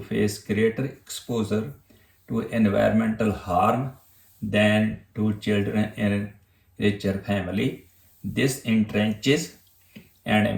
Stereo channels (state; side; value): identical; both; correlation 1.00